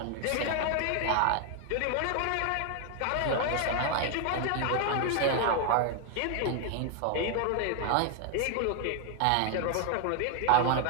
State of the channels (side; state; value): both; different; correlation 0.00